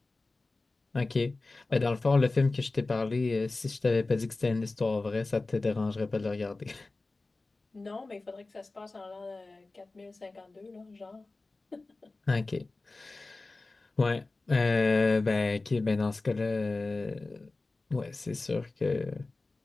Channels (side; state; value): right; quieter; 3.3 dB